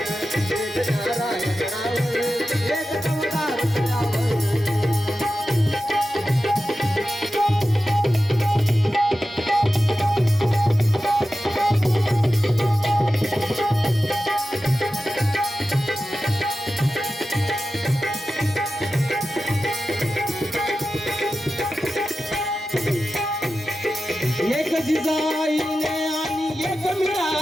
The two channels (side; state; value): both; normal; correlation 0.93